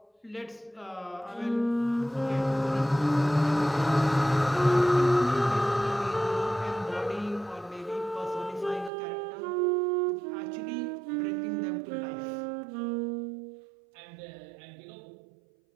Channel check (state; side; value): drops out; left; at 8.9 s